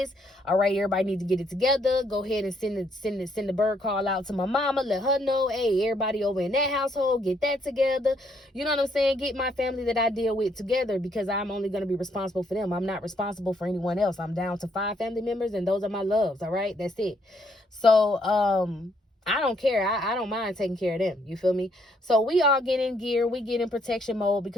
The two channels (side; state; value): both; normal; correlation 0.71